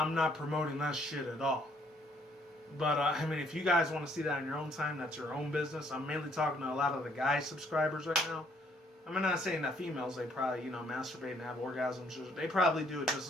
not promoting that shit at all. But I mean, if you guys want to see that in your own time, that's your own business. I'm mainly talking to a lot of the guy subscribers right now. I'm not saying that females, they probably, masturbate and have orgasms. They probably do it just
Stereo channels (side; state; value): both; normal; correlation 0.65